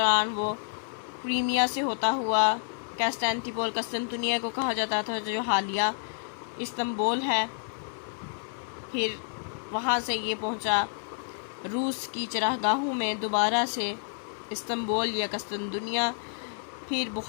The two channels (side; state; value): right; silent; digital silence